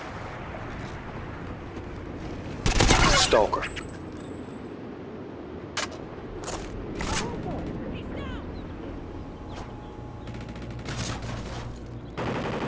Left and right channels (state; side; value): identical; both; correlation 1.00